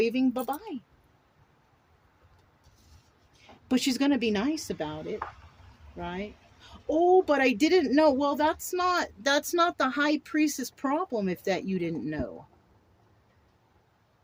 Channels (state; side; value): identical; both; correlation 1.00